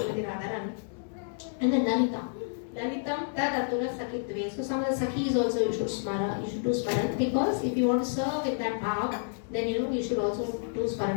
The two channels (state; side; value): silent; right; digital silence